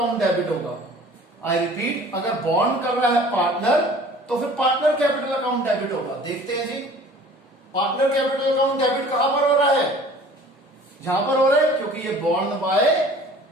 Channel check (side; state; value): both; normal; correlation 0.48